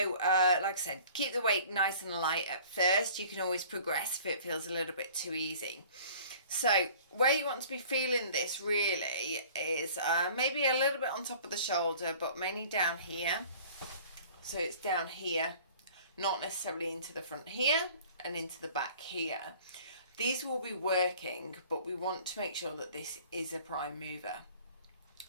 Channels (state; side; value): inverted; both; correlation -0.49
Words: like I said, keep the weight nice and light at first. You can always progress if it feels a little bit too easy. So where you want to be feeling this really is maybe a little bit on top of the shoulder, but mainly down here. So it's down here, not necessarily into the front here and into the back here. These will be working, but we want to make sure that this is a prime mover.